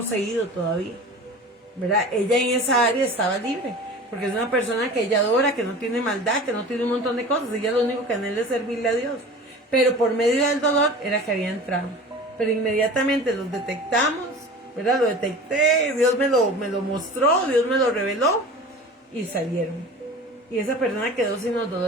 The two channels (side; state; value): both; normal; correlation 0.37